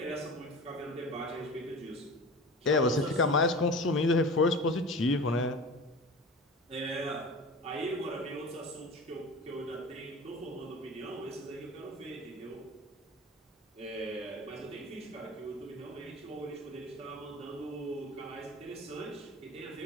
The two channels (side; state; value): both; normal; correlation 0.34